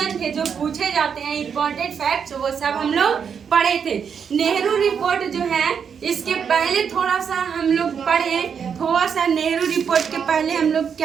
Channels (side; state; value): left; quieter; 7.0 dB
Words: थे जो पूछे जाते हैं, इम्पोर्टेंट फैक्ट्स, वो सब हम लोग पढ़े थे। नेहरू रिपोर्ट जो है इसके पहले थोड़ा सा हम लोग पढ़े, थोड़ा सा नेहरू रिपोर्ट के पहले हम लोग